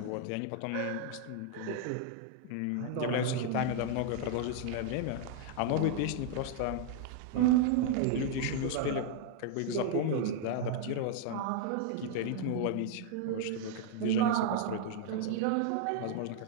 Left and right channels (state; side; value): different; both; correlation -0.01